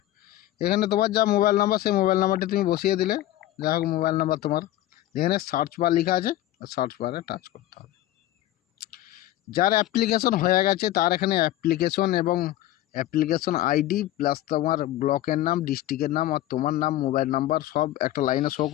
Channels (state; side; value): quieter; right; 14.5 dB